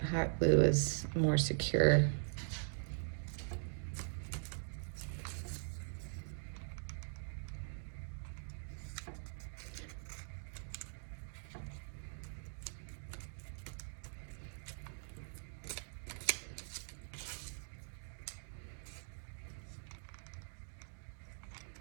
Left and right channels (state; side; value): silent; left; digital silence